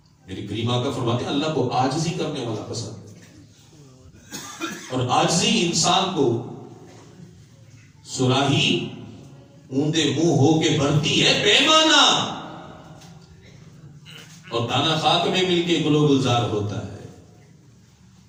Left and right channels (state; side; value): identical; both; correlation 1.00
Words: میری کریم آقا فرماتے ہیں اللہ کو عاجزی کرنے والا پسند ہے, اور عاجزی انسان کو سراہی اوندے منہ ہو کے بھرتی ہے پیمانہ, اور دانا خاک میں مل کے گلو گلزار ہوتا ہے.